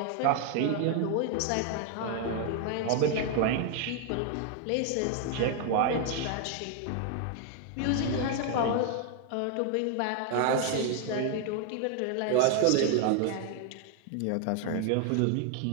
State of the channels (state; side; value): different; both; correlation 0.00